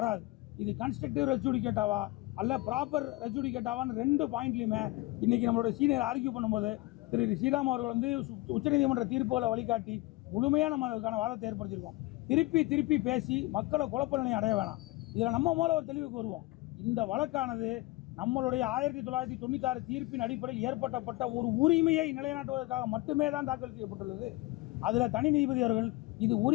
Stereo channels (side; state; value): right; quieter; 20.2 dB